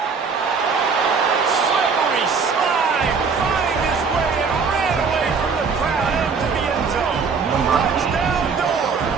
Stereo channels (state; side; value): quieter; left; 5.3 dB